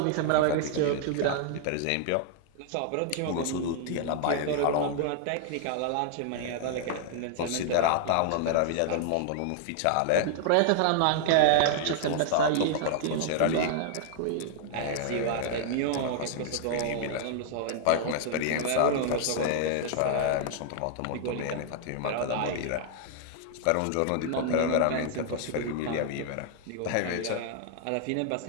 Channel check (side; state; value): both; different; correlation 0.00